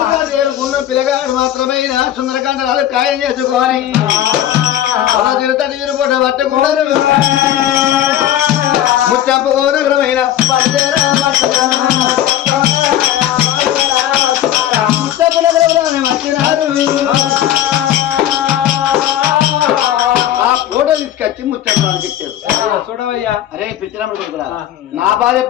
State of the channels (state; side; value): quieter; right; 11.8 dB